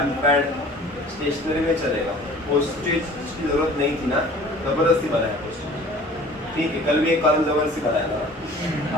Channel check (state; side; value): normal; both; correlation 0.48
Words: पैड स्टेशनरी में चलेगा. पोस्टेज की जरूरत नहीं थी ना, जबरदस्ती बनाया पोस्टेज. ठीक है, कल भी एक कॉलम जबरदस्ती बनाया था,